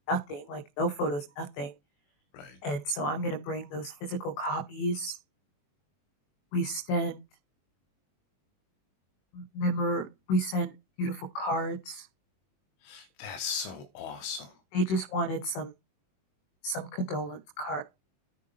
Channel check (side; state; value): right; late; 21 ms